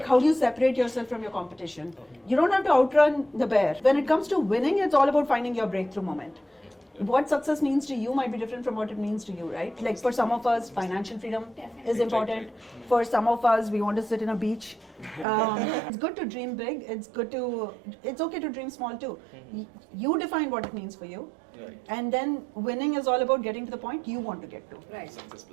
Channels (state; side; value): drops out; left; at 15.2 s